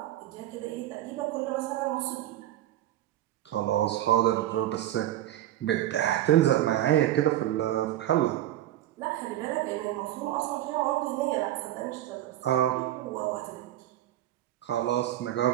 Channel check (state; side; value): quieter; left; 13.3 dB